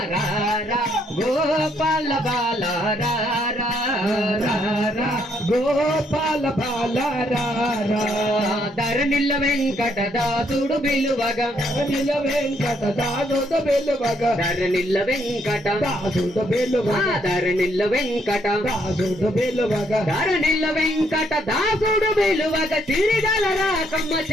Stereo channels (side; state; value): both; normal; correlation 0.71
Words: రారా గోపాల బాల రారా రారా గోపాల బాల రారా ధరణిల్ల వెంకటదాసుడు విలువగా నిల వెంకట దాసుడు వెలువగా ధరణిల్ల వెంకట దాసుడు వెలువగా ధరణిల్ల వెంకట దాసుడు వెలువగా ధరణిల్ల వెంకట దాసుడు విలువగా తిరిగల రాకమ్మ